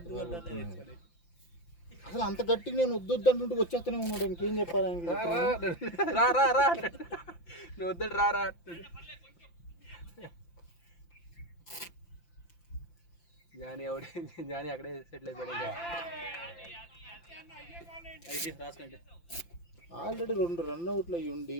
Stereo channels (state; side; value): late; right; 5.8 ms